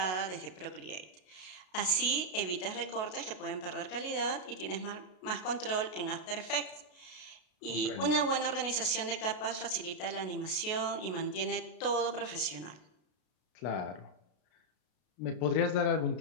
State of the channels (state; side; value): late; right; 33 ms